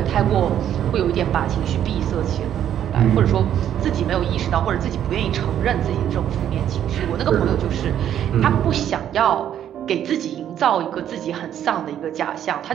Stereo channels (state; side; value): quieter; left; 10.3 dB